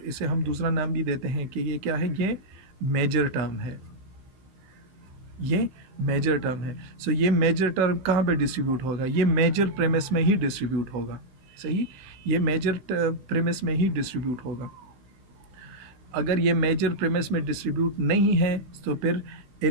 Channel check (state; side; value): late; left; 15 ms